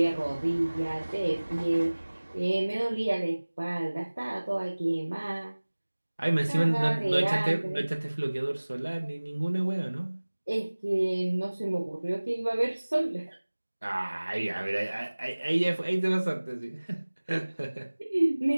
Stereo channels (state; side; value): inverted; both; correlation -1.00